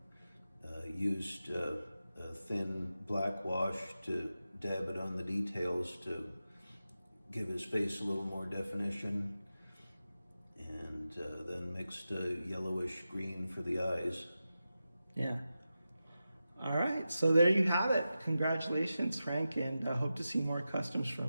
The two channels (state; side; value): inverted; both; correlation -0.92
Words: used a thin black wash to dab it on the details to give his face a little more definition, and then mixed a yellowish green for the eyes. Yeah. All right, so there you have it. Congratulations, Frank, and I hope to see more customs